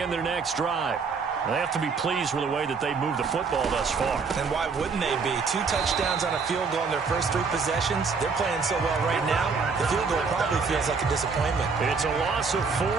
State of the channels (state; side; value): quieter; left; 5.0 dB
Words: their next drive. They have to be pleased with the way that they've moved the football thus far. And why wouldn't they be? 2 touchdowns on a field goal in their first 3 possessions. They're playing so well right now, the field goal probably feels like a disappointment. It's a loss of 4